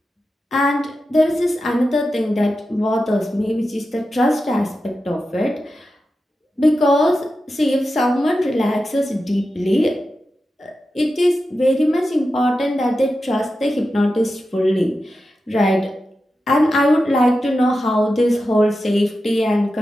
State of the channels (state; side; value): normal; both; correlation 0.91